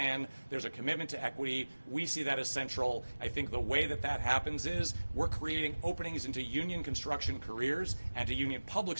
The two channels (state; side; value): inverted; both; correlation -1.00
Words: There's a commitment to equity. We see that as central. I think the way that that happens is we're creating openings into union construction careers and to union public